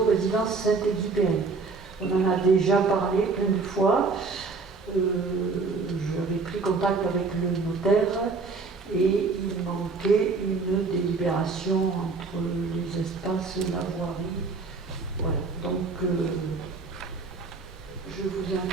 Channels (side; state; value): left; quieter; 4.2 dB